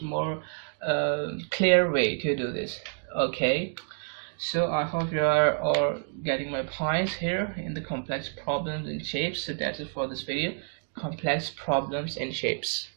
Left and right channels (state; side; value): silent; left; 59 dB below the other